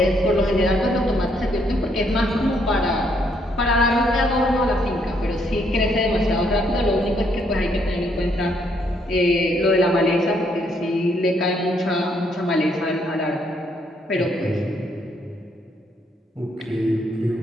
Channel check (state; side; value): normal; both; correlation 0.72